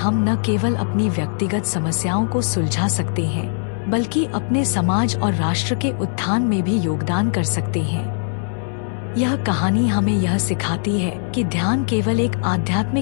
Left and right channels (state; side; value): silent; right; digital silence